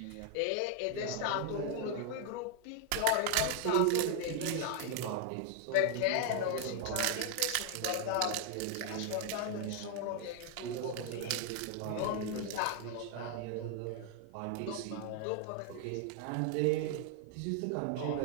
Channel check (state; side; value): different; both; correlation 0.01